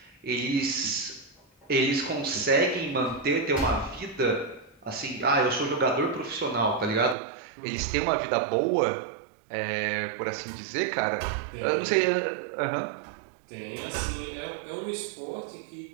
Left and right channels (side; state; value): left; drops out; at 7.2 s